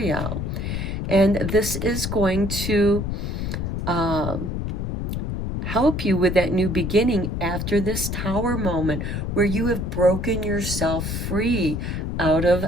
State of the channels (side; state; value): left; noise; rumble, 3 dB below the sound